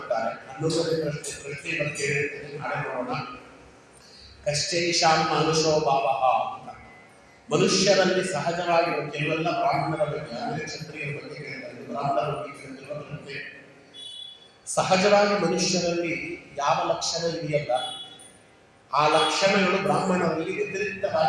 11ನೇ ಪ್ರಶ್ನೆ ಬಗ್ಗೆ ನಾಳೆ ನೋಡೋಣ. ಕಶ್ಚೈಷಾಂ ಮನುಷ್ಯೋ ಭಾವ ಅಂತ. ಮನುಷ್ಯರಲ್ಲಿ ಸಹಜವಾಗಿ ಕೆಲವೆಲ್ಲ ಬ್ರಾಹ್ಮಣರ ಬಗ್ಗೆ, ಆಮೇಲೆ ಕ್ಷತ್ರಿಯರ ಬಗ್ಗೆ ಕೇಳ್ತಾರೆ, ಬ್ರಾಹ್ಮಣರ ಬಗ್ಗೆ ಕೇಳಿದ್ರೆ ಸಹಜವಾಗಿ ಮನುಷ್ಯರಲ್ಲಿ ಯಾವ ಲಕ್ಷಣ ಇದೆಯಲ್ಲ, ಆ ಲಕ್ಷಣಗಳು ಬ್ರಾಹ್ಮಣರಲ್ಲಿ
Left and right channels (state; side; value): identical; both; correlation 1.00